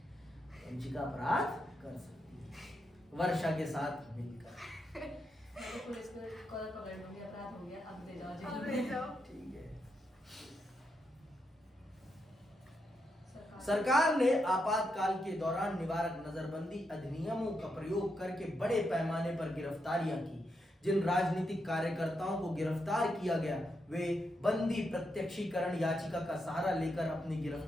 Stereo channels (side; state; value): both; normal; correlation 0.83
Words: वंचिका अपराध कर सकती है वर्षा के साथ मिलकर। पुलिस को कॉल पकड़ लूंगी, अपराध हो गया, अब ले जाओ। ठीक है। सरकार ने आपातकाल के दौरान निवारक नजरबंदी अधिनियमों का प्रयोग करके बड़े पैमाने पर गिरफ्तारियां की। जिन राजनीतिक कार्यकर्ताओं को गिरफ्तार किया गया वे बंदी प्रत्यक्षीकरण याचिका का सहारा लेकर अपनी